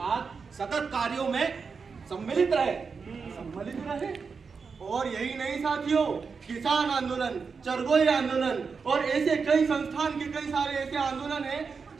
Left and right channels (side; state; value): left; quieter; 5.3 dB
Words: सतत कार्यों में सम्मिलित रहे। और यही नहीं साथियों, किसान आंदोलन, चरगोई आंदोलन और ऐसे कई संस्थान के कई सारे ऐसे आंदोलन हैं